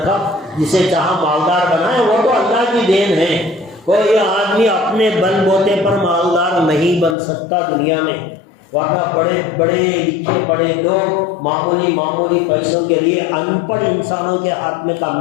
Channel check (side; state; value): right; drops out; at 7.2 s